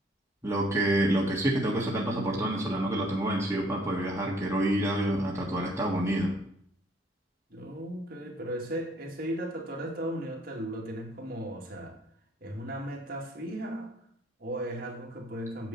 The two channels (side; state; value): both; normal; correlation 0.63